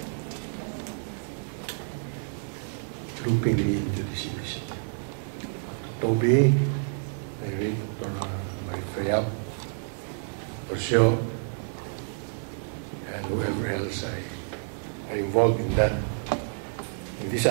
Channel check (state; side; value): silent; left; digital silence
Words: looping me into this initiative. Toby, Dr. Marifayap, Orsio, and whoever else are involved in that in this